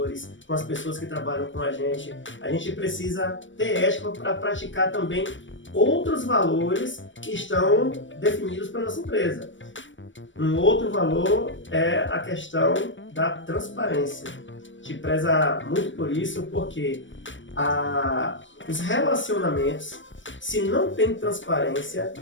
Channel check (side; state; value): right; late; 0.56 ms